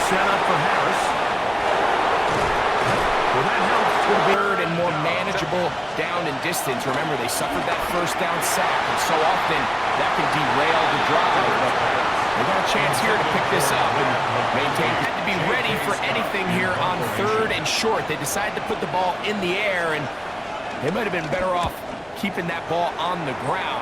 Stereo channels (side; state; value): both; identical; correlation 1.00